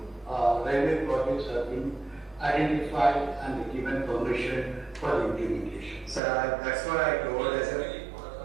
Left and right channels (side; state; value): left; drops out; at 6.2 s